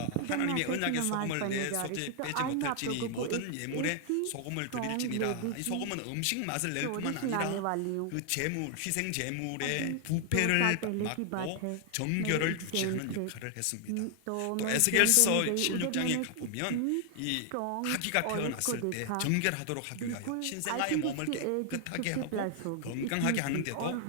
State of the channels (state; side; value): different; both; correlation 0.00